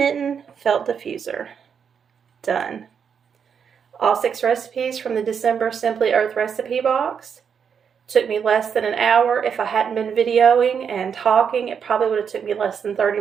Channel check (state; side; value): quieter; left; 7.1 dB